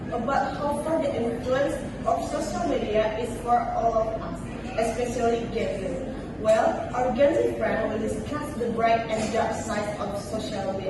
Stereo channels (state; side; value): identical; both; correlation 1.00